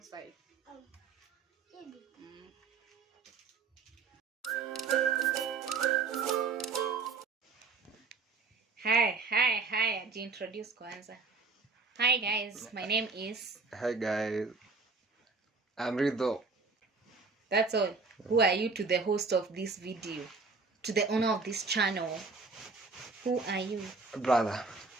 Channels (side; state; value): left; quieter; 4.4 dB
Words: side. Hi. Introduce kwanza. Hi guys, my name is. Hi guys. I'm Rido. That's all. Who are you to the host of this video? To the owner of this channel? Who are you? Brother.